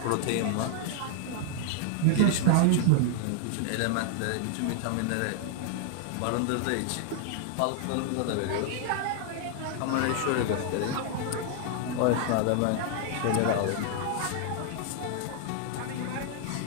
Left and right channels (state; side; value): different; both; correlation 0.00